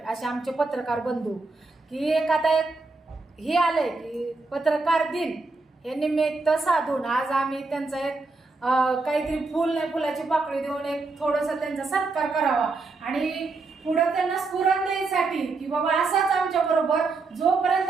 असे आमचे पत्रकार बंधू की एक आता एक हे आलंय की पत्रकार दिन हे निमित्त साधून आज आम्ही त्यांचा एक काहीतरी फुल नाही फुलाची पाकळी देऊन एक थोडंसं त्यांचा सत्कार करावा आणि पुढे त्यांना स्फुरण द्यायसाठी की बाबा असाच आमच्या बरोबर जोपर्यंत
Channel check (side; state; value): left; quieter; 3.7 dB